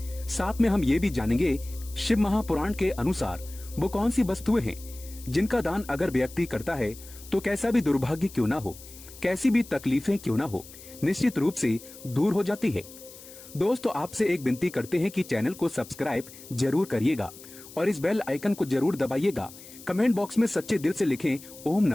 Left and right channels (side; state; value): left; noise; hiss, 18 dB below the sound